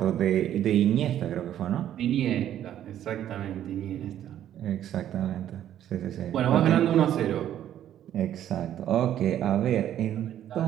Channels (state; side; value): quieter; left; 11.2 dB